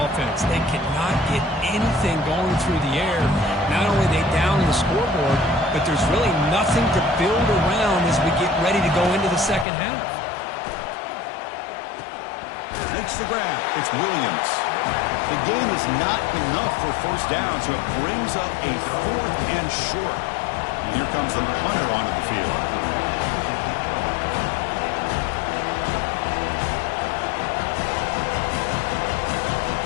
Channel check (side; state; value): right; drops out; at 9.7 s